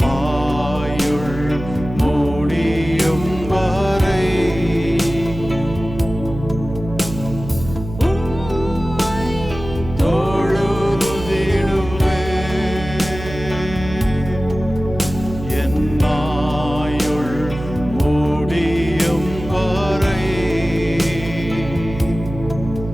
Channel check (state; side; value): noise; right; hum, 11 dB below the sound